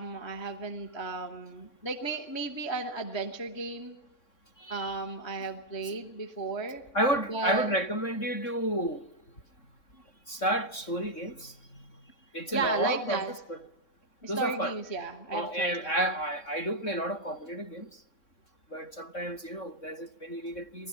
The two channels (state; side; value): late; right; 3.6 ms